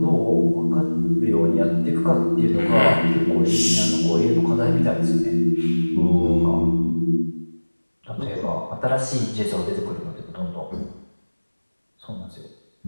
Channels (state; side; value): inverted; both; correlation -1.00